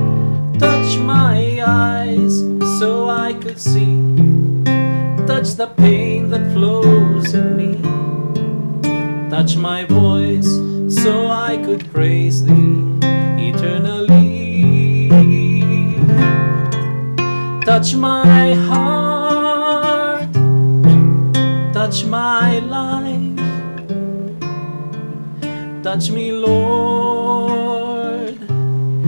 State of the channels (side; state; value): both; inverted; correlation -1.00